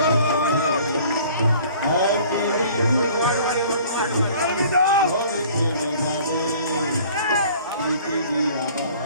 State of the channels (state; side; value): inverted; both; correlation -0.51